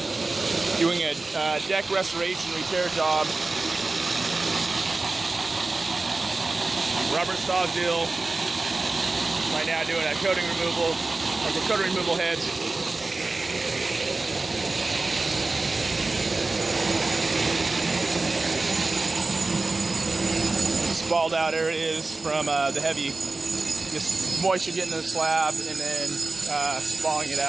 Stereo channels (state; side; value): quieter; left; 3.4 dB